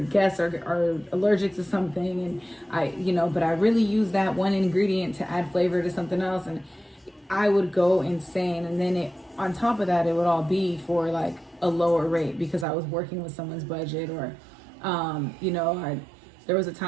are allergic to something, and but I really use that one ingredient to add flavor to something else, and I would go insane. And then on top of that, it would all be for like a lower rate because I was working with someone's budget, or there was a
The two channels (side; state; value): left; drops out; at 12.7 s